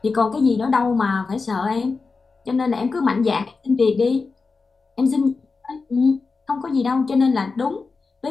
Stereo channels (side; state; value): right; quieter; 4.3 dB